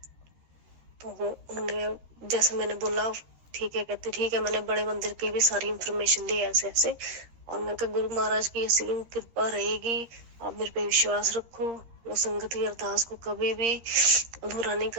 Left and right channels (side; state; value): left; late; 13 ms